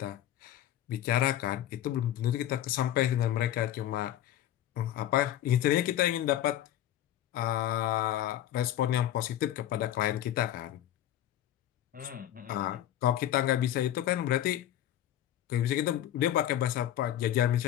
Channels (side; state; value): right; quieter; 12.3 dB